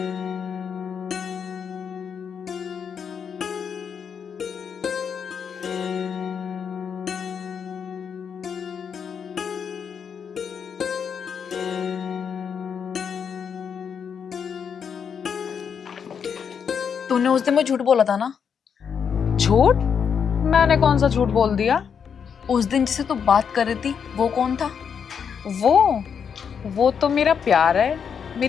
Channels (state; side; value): quieter; right; 7.0 dB